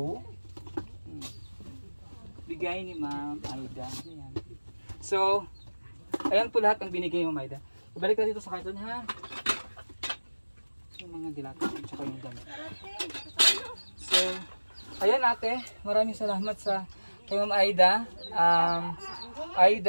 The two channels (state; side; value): inverted; both; correlation -1.00